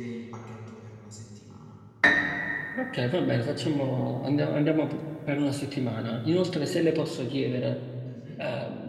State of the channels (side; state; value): both; identical; correlation 1.00